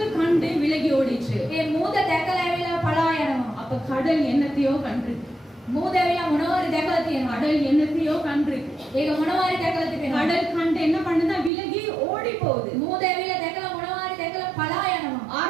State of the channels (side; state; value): left; drops out; at 11.5 s